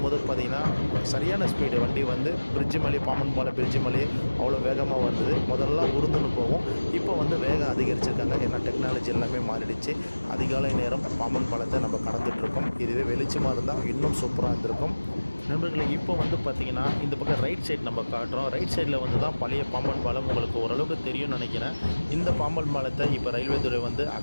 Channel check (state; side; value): inverted; both; correlation -1.00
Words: பார்த்திங்கன்னா சரியான ஸ்பீடு வண்டி வந்து பிரிட்ஜு மேலே பாம்பன் பாலம் பிரிட்ஜு மேலே அவ்வளோ வேகமாக வந்தது. முதல்ல உருந்துன்னு போகும், இப்போ வந்து வேகம் அதிகரிச்சிருக்காங்க. ஏன்னா டெக்னாலஜி எல்லாமே மாறிடுச்சு. அதிகாலை நேரம் பாம்பன் பாலத்தை நம்ம கடந்துகிட்ருக்கோம். இதுவே வெளிச்சமாக இருந்தால் இன்னும் சூப்பராக இருந்திருக்கும் நண்பர்களே. இப்போ வந்து பார்த்திங்கன்னா இந்த பக்கம் ரைட் சைடு நம்ம காட்டுறோம். ரைட் சைடில் வந்து தான் பழைய பாம்பன் பாலம். உங்களுக்கு ஓரளவுக்கு தெரியும்னு நினைக்கிறேன். இந்த பாம்பன் பாலத்தை இப்போ ரயில்வே துறை வந்து